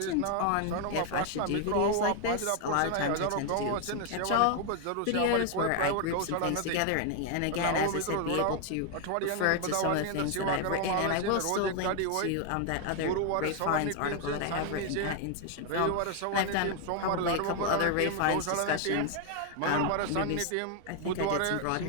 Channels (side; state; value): both; different; correlation 0.00